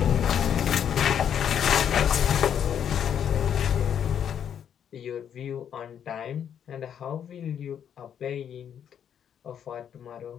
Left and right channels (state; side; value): quieter; right; 8.8 dB